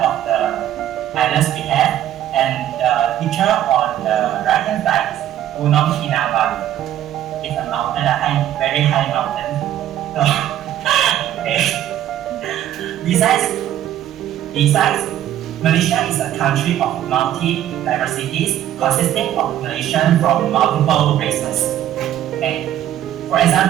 the islands we have, and the picture on the right-hand side is Gunung Kinabalu. It's a mountain, a very high mountain. So, okay. Besides, Malaysia is a country of multi-diversities consisting of Malaysians from multiple races. Okay. For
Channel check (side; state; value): left; quieter; 11.9 dB